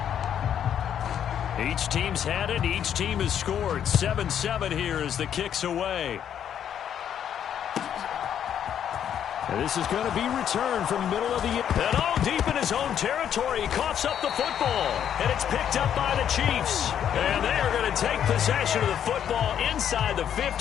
Each team's had it. Each team has scored. 7-7 here as the kick's away. And this is going to be returned from middle of the... And deep in his own territory. He coughs up the football. And it's picked up by the Chiefs. And they are going to take possession of the football inside the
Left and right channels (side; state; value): right; quieter; 9.3 dB